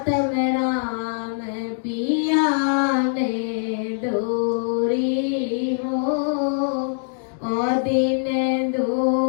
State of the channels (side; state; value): right; silent; digital silence